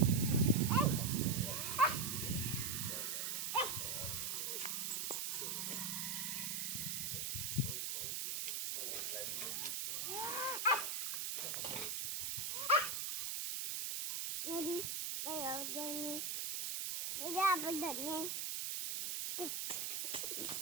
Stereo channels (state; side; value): noise; right; hiss, 1 dB below the sound